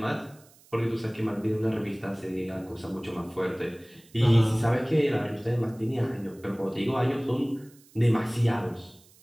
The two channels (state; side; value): noise; right; hiss, 27 dB below the sound